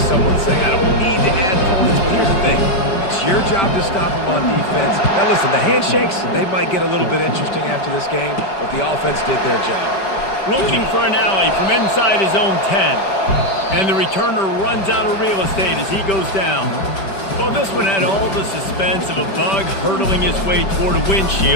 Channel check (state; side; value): late; right; 5.3 ms